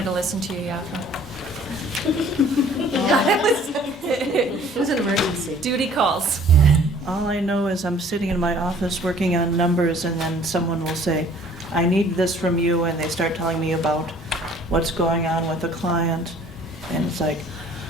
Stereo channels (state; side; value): normal; both; correlation 0.54